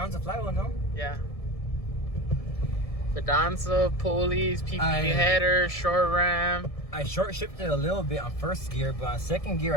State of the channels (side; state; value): right; late; 1.7 ms